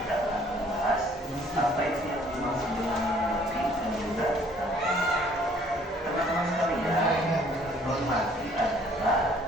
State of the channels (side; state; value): both; normal; correlation 0.59